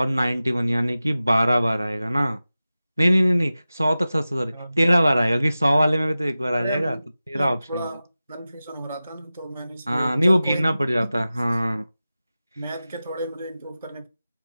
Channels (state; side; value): inverted; both; correlation -0.95